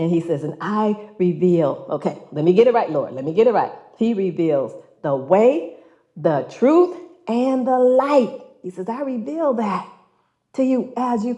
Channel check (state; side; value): identical; both; correlation 1.00